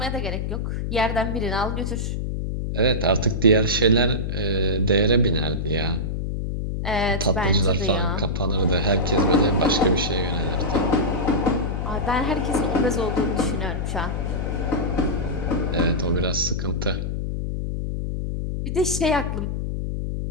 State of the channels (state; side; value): noise; left; hum, 2 dB below the sound